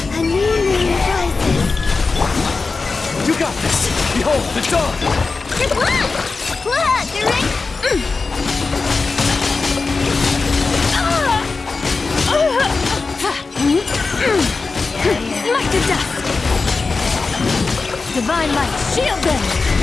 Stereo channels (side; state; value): right; quieter; 4.1 dB